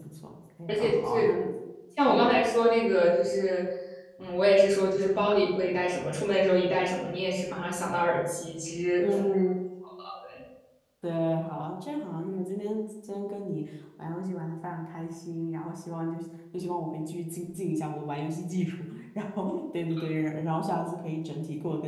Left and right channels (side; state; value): both; identical; correlation 1.00